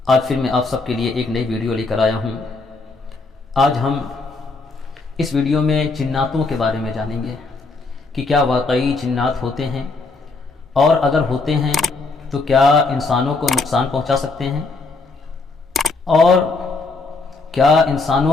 آج پھر میں آپ سب کے لیے ایک نئی ویڈیو لے کر آیا ہوں۔ آج ہم اس ویڈیو میں جناتوں کے بارے میں جانیں گے کہ کیا واقعی جنات ہوتے ہیں، اور اگر ہوتے ہیں تو کیا انسانوں کو نقصان پہنچا سکتے ہیں، اور کیا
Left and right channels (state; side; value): quieter; right; 3.8 dB